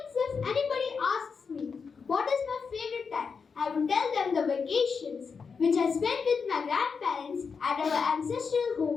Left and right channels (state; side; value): quieter; right; 5.6 dB